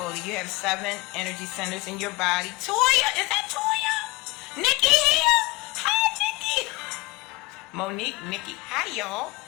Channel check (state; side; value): quieter; right; 23.2 dB